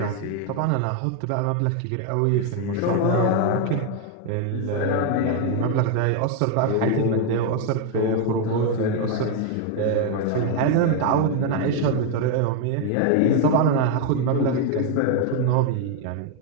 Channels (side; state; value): both; different; correlation 0.01